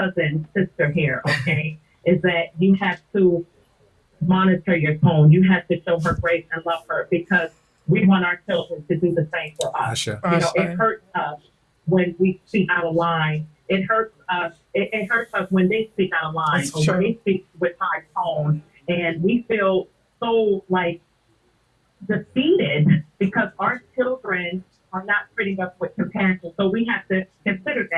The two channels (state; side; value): identical; both; correlation 1.00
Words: sister here, okay, is that you have to monitor your tone. You have to show her grace and love her because we want our children to do the same for us. Ashe. You know, it hurts us when we speak out of line. It hurts us. It hurts us when they speak out of line That's or true. when they speak with high tone, and we feel so like defeated because our children are not treating us with compassion. So we have to consider